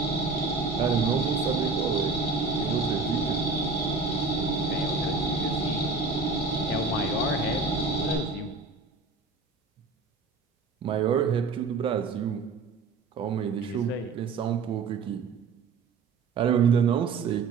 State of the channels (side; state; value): left; quieter; 4.3 dB